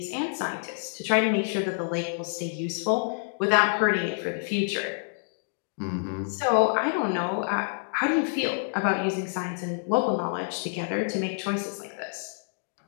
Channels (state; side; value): silent; right; digital silence